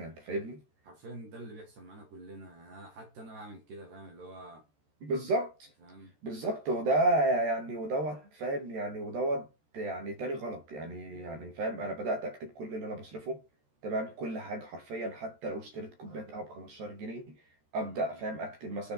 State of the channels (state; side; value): late; left; 13 ms